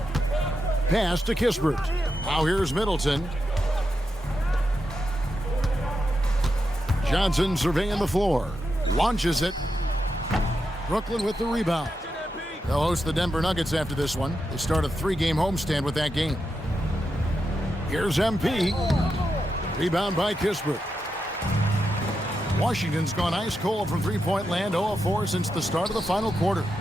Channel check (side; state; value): both; normal; correlation 0.87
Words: Pass to Kispert. Now here's Middleton. Johnson surveying the floor. Launches it. Brooklyn with the rebound. They'll host the Denver Nuggets after this one. They start a 3-game homestand with that game. Here's MP. Rebound by Kispert. Washington's gone ice cold from three-point land, 0 of 4 since the start of the final quarter.